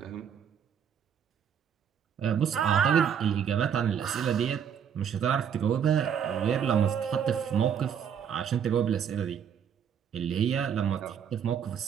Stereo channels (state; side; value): quieter; left; 8.1 dB